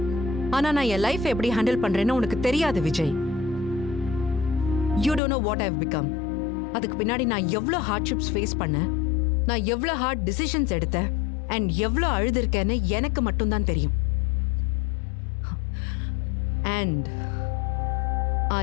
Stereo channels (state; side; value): drops out; right; at 5.2 s